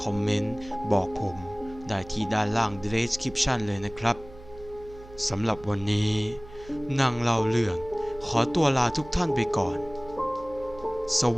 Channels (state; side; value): noise; right; hum, 19 dB below the sound